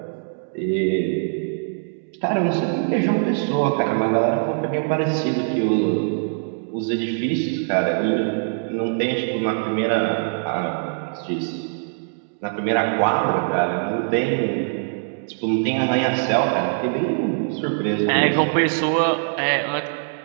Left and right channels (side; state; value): left; silent; digital silence